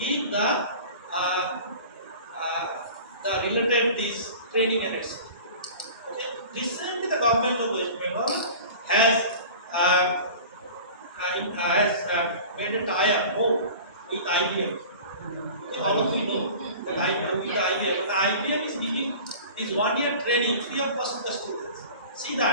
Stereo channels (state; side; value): inverted; both; correlation -0.40